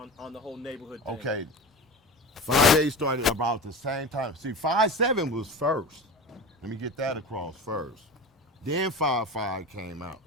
the whole neighborhood thing? Okay. 5-8 started about the same time. See, 5-7 was first. Let me get that across first. Then 5-5 came out.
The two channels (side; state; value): both; normal; correlation 0.30